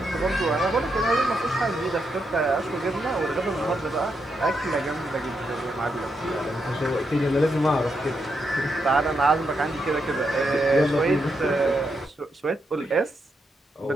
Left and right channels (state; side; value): normal; both; correlation 0.82